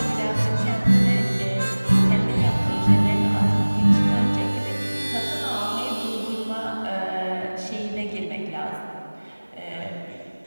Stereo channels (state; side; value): inverted; both; correlation -1.00